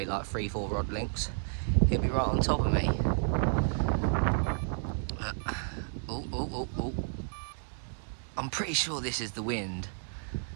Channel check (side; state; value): left; silent; digital silence